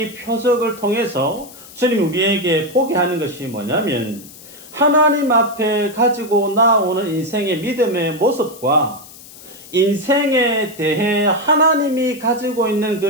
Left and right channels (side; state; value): left; noise; hiss, 19 dB below the sound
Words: 표적을 통해서 주님 우리에게 보게 하는 것이 뭐냐면 하나님 앞에 가지고 나오는 인생의 믿음의 모습과 인생에 대해 하나님이 가지고 있는 그